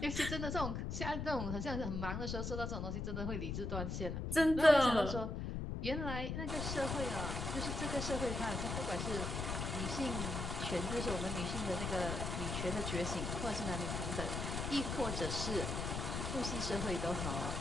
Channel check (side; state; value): left; noise; rumble, 3 dB below the sound